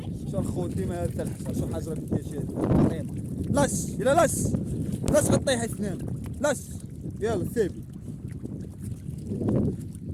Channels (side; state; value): both; identical; correlation 1.00